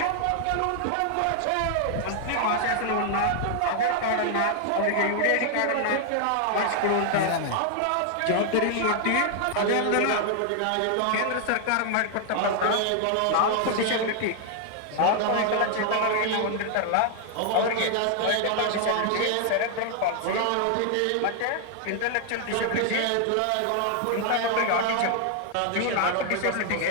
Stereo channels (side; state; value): both; different; correlation 0.00